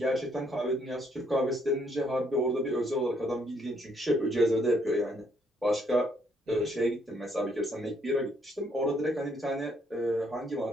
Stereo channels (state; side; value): normal; both; correlation 0.70